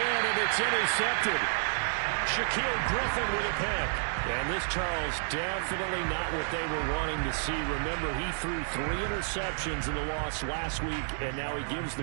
and it's intercepted. Shaquill Griffin with a pick. And this, Charles, definitely not what they were wanting to see. Remember, he threw 3 interceptions in the loss last week, and now he gives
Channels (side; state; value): left; silent; digital silence